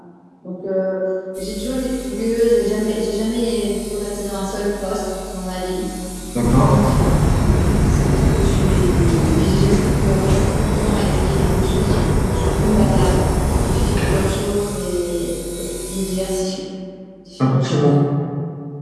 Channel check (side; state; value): both; identical; correlation 1.00